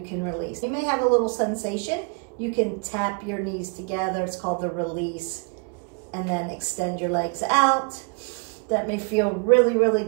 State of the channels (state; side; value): quieter; left; 35.2 dB